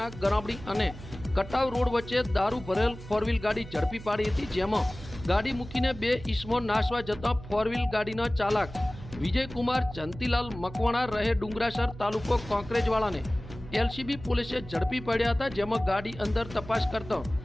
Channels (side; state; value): right; noise; hum, 14 dB below the sound